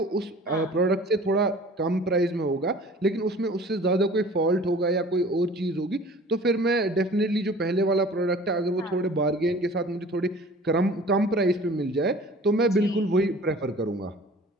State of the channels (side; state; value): both; normal; correlation 0.46